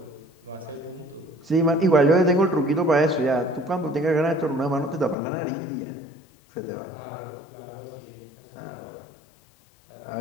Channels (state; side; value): drops out; right; at 5.2 s